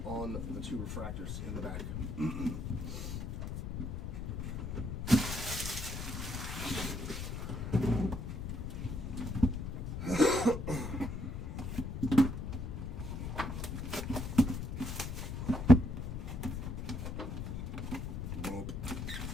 on the two refractors in the back. Nope.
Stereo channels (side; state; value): left; noise; rumble, 4 dB below the sound